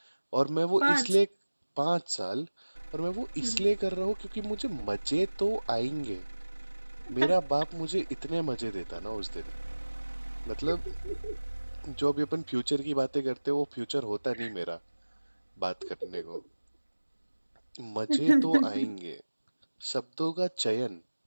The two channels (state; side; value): inverted; both; correlation -1.00